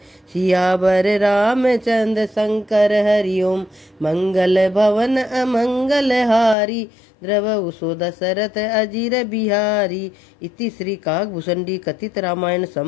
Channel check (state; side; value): drops out; right; at 6.6 s